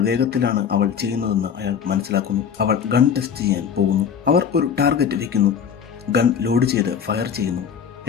വേഗത്തിലാണ് അവൾ ചെയ്യുന്നതെന്ന് അയാൾ മനസ്സിലാക്കുന്നു. അവൾ ഗൺ ടെസ്റ്റ് ചെയ്യാൻ പോകുന്നു. അവർ ഒരു ടാർഗറ്റ് വെക്കുന്നു. ഗൺ ലോഡ് ചെയ്ത് ഫയർ ചെയ്യുന്നു.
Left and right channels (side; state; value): right; quieter; 7.4 dB